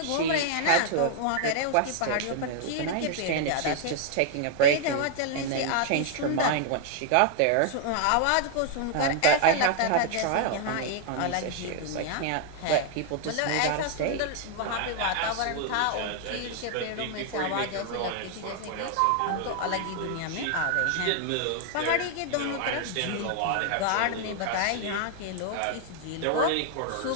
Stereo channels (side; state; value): both; different; correlation 0.00